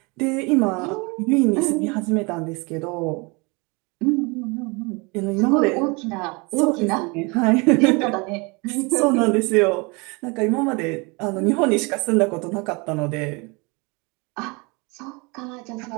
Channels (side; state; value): left; quieter; 28.6 dB